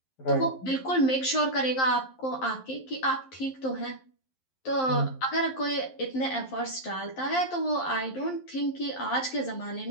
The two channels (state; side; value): late; right; 11 ms